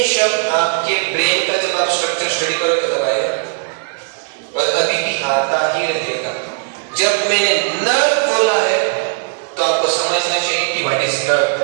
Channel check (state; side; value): silent; left; digital silence